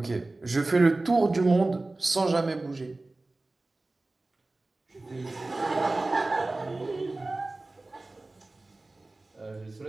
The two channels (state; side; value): quieter; left; 3.0 dB